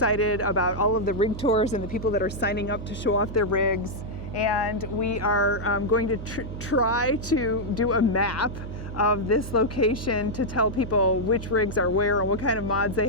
about all of the rig tours and the people that are signing up to show off their rigs. And we are going to try to do a map of this location to tell people which rigs are where and what kind of mods they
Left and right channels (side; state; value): right; noise; hum, 9 dB below the sound